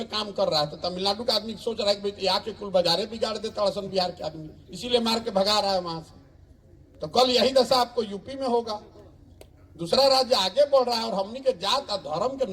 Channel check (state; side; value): identical; both; correlation 1.00